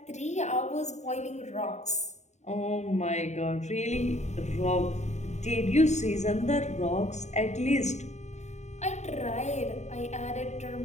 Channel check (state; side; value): late; right; 0.33 ms